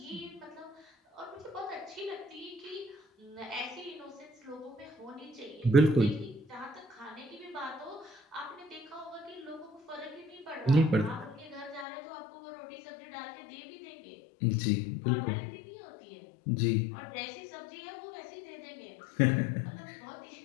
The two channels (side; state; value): right; drops out; at 11.9 s